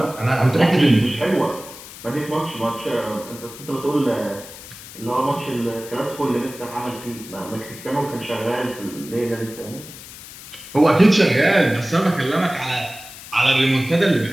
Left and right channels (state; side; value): noise; left; hiss, 15 dB below the sound